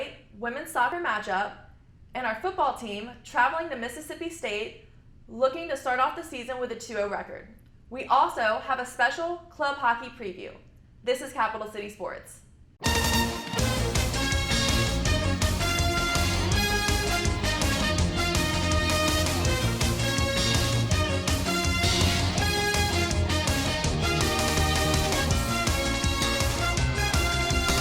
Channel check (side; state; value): both; identical; correlation 1.00